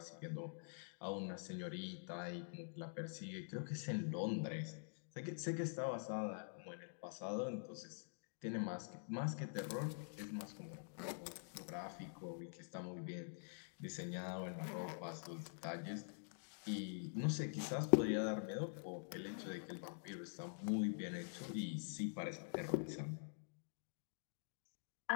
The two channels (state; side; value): silent; right; digital silence